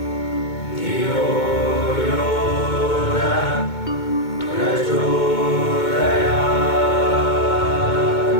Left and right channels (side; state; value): right; late; 2.2 ms